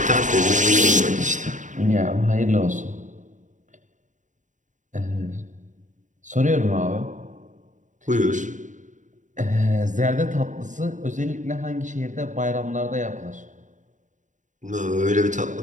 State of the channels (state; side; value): late; left; 0.36 ms